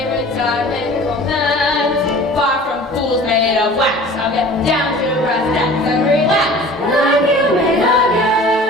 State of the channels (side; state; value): both; normal; correlation 0.43